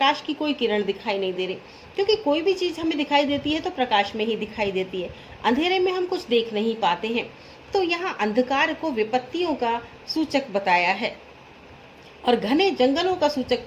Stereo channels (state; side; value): identical; both; correlation 1.00